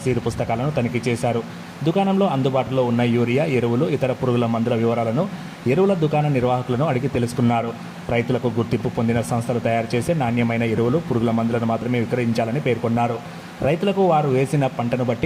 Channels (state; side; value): identical; both; correlation 1.00